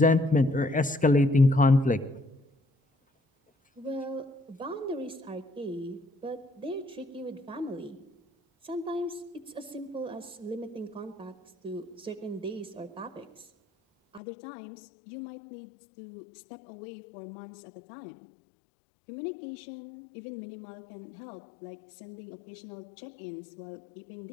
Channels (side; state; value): right; drops out; at 14.2 s